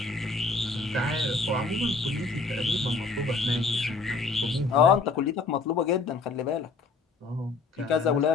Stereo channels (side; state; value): right; quieter; 4.1 dB